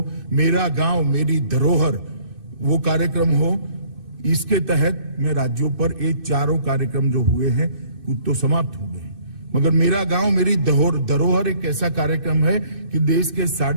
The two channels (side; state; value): left; late; 2.6 ms